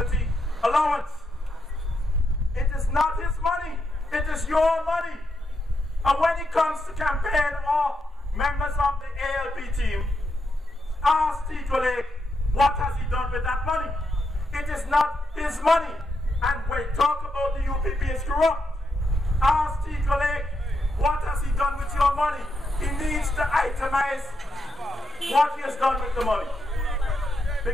allowance. It is not his money. It is your money. And when it comes to campaign or members of the ALP team, ask Tindale what has he done with that money. It is not his money. And when talk about the UPP is corrupt, ask Tindale what has he done with your money. He needs to itemize what he has done with the money.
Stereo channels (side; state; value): both; normal; correlation 0.81